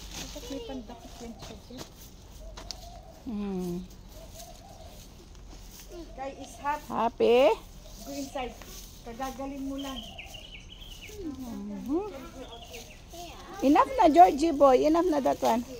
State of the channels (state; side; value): identical; both; correlation 1.00